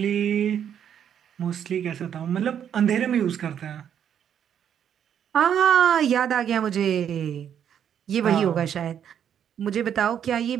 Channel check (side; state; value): left; quieter; 9.0 dB